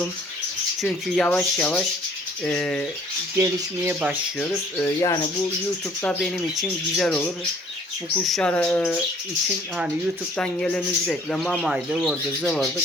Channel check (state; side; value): normal; both; correlation 0.57